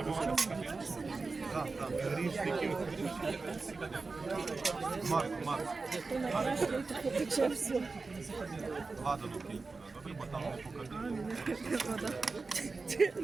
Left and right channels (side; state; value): left; quieter; 4.0 dB